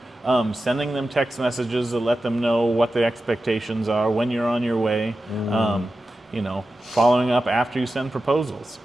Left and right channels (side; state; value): both; normal; correlation 0.92